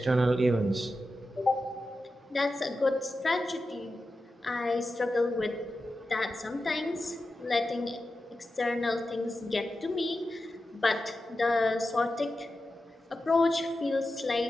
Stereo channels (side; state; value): both; normal; correlation 0.91